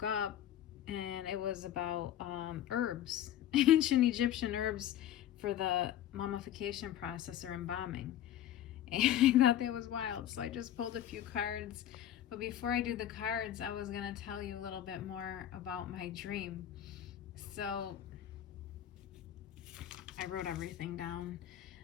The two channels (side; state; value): right; quieter; 11.5 dB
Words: up, and it was about herbs, ancient Egyptian herbs for the mummification process or embalming. And I thought that was wild. So I just pulled a few cards. But before I do the cards, I was going to tell you a little bit more about my dream. So I wrote everything down.